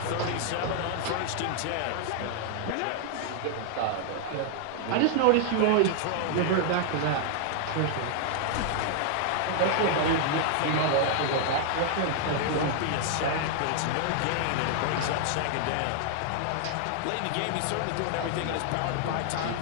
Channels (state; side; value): different; both; correlation 0.00